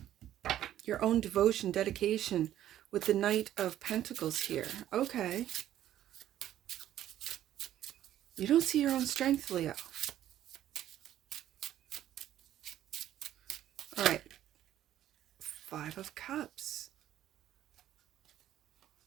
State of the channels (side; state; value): left; quieter; 12.1 dB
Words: your own devotion, dedication with the Knight of Pentacles here. Okay. You don't see your own strength, Leo. All right. Five of Cups